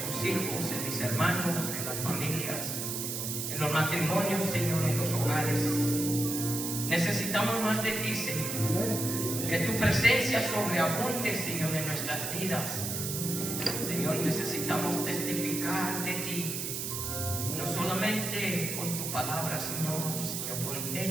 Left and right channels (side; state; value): right; noise; hiss, 3 dB below the sound